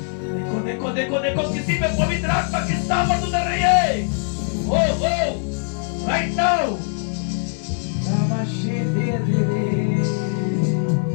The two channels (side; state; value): right; silent; digital silence